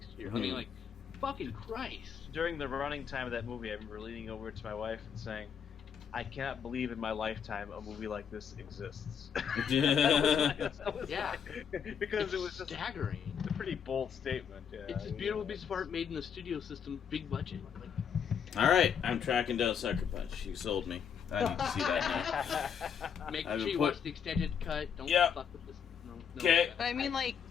here. I mean, like fucking Christ. during the running time of that movie, I remember leaning over to my wife and saying, I cannot believe in my lifetime a movie like this exists. That was Yeah. because It's it was just staggering. a pretty bold statement. Yeah, It's a beautiful piece of art made in the studio system, big budget. Like, All right, I'm tracking down Sucker Punch. You sold me. I need to see that now. make I've sure been you put- watch the extended cut. Don't Yeah. fuck with this. No, Okay. But I mean, like,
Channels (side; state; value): right; quieter; 7.6 dB